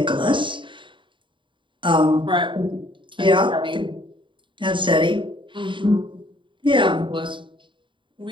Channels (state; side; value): late; left; 0.24 ms